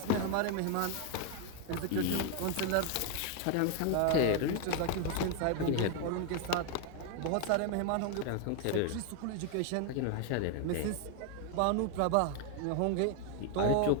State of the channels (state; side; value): different; both; correlation 0.01